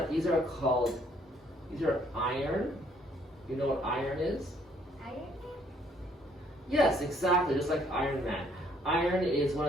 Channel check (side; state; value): both; normal; correlation 0.64